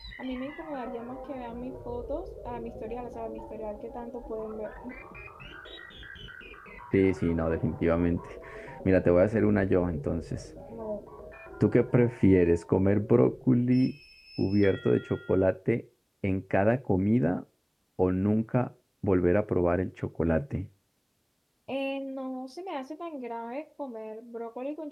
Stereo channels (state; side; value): identical; both; correlation 1.00